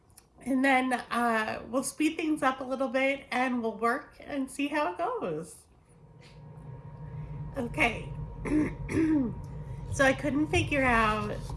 we'll speed things up a little bit and we'll work and see how it goes. Okay, so I couldn't figure out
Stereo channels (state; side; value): identical; both; correlation 1.00